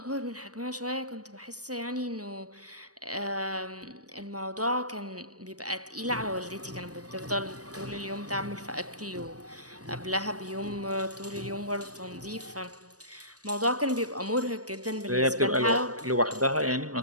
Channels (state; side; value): late; left; 0.67 ms